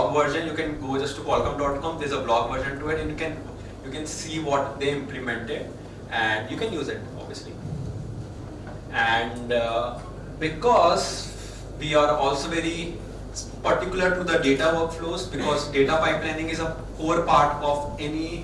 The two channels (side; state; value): both; identical; correlation 1.00